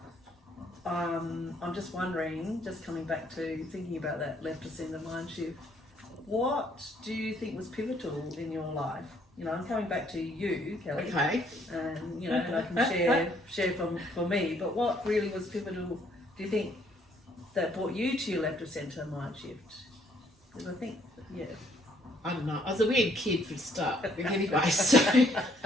I'm just wondering, just coming back to thinking about that left us in the mind shift. What do you think was pivotal in your life? You know, I'm coming back to you, Kelly. Okay. And you know, and I can share for me. But what really was pivotal? Do you think that brought you to your left of centre mind shift? Because I think, yeah. I don't know. I was a weird kid for a start. Anyway, so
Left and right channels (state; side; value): normal; both; correlation 0.66